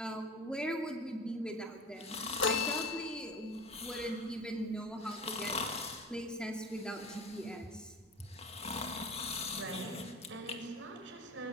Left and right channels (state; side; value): normal; both; correlation 0.34